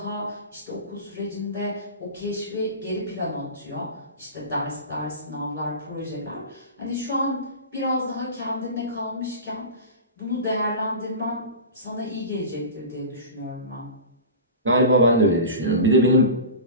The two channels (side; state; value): both; inverted; correlation -0.30